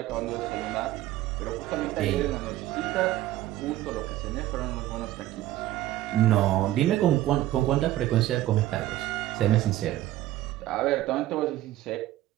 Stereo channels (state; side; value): quieter; left; 14.7 dB